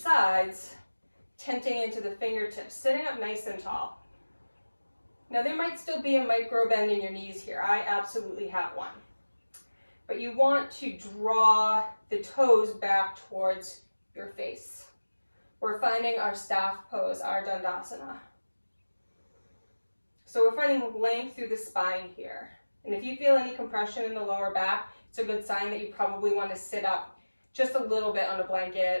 tenting into the fingertips, sitting up nice and tall. Now there might still be a micro bend in your knees here. I absolutely have one. But you want to draw the toes back towards your face. We're finding our staff pose, our Dandasana. So we're finding length through the spine here. And if you feel any compression in the lower back, it's a good sign that you probably want to sit up just a little bit on a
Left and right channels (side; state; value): both; inverted; correlation -1.00